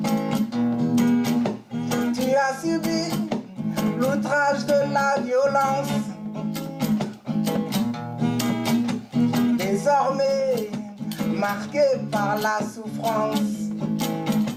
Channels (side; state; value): both; identical; correlation 1.00